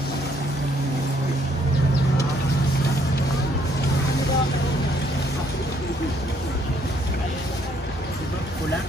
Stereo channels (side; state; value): both; normal; correlation 0.67